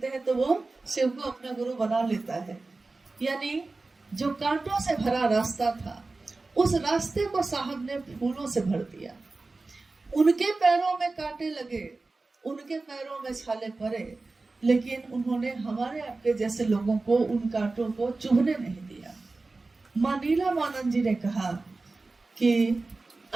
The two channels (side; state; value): left; quieter; 3.5 dB